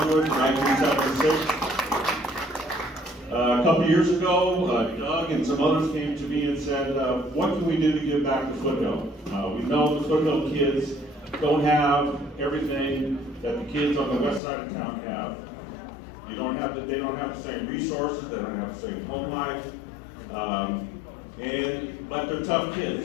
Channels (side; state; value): right; drops out; at 14.4 s